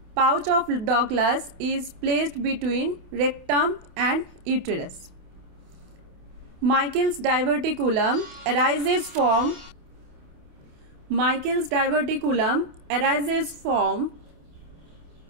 Pouch of Douglas is placed between rectum and uterus. Michael's diverticulum arises from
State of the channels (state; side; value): late; left; 28 ms